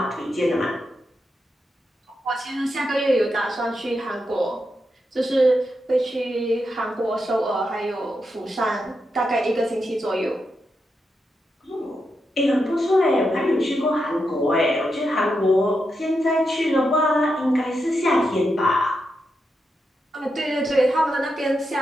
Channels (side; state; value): both; normal; correlation 0.85